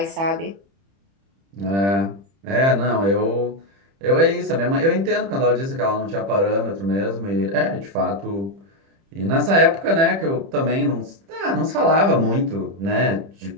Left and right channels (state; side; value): late; left; 30 ms